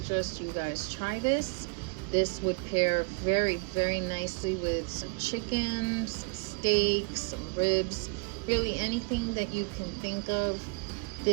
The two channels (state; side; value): quieter; left; 30.3 dB